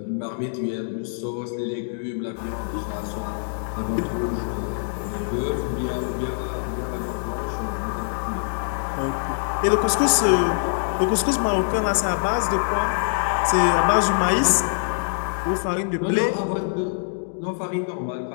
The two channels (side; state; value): right; silent; digital silence